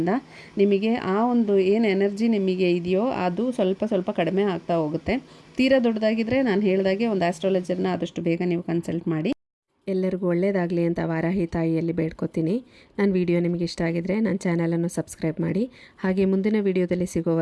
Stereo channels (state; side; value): identical; both; correlation 1.00